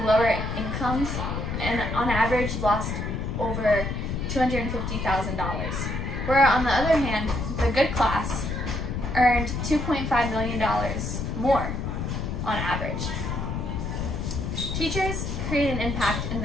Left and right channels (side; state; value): left; noise; rumble, 3 dB below the sound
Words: lower incomes and on average lost over $250,000. Where on the other hand, the good class earned $2.5 million more on average. Teachers create an impact in